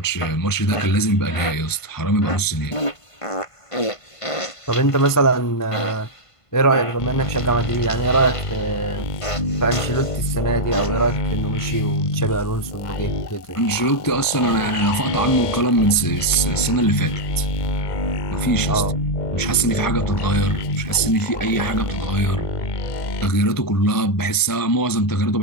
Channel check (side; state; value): right; late; 1.5 ms